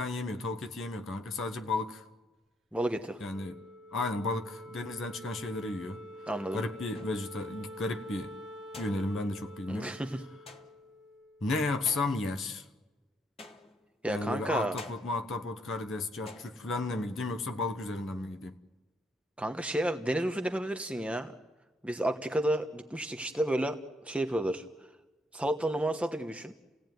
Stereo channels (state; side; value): normal; both; correlation 0.72